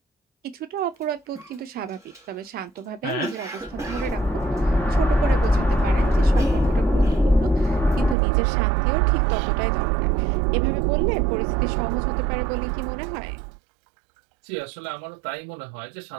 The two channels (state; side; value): drops out; left; at 8.2 s